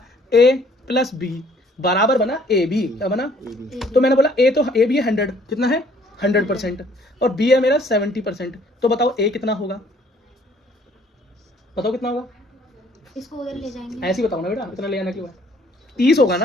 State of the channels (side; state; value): both; normal; correlation 0.60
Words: A प्लस B बराबर बना AB, क्या बना? तो मैंने बोला A तो AB है 100, कितना है 100%, और B है मेरा 70%। तो बताओ A कितना होगा, बताओ कितना होगा? इसको उधर ले जाएंगे, ऐसे ही बताओ ना बेटा, इतना ले आना क्यों है? 30 होगा ना।